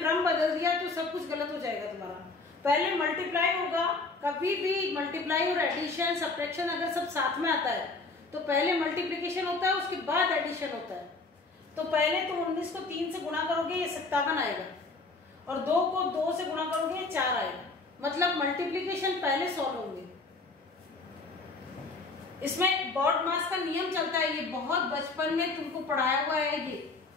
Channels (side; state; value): right; quieter; 3.7 dB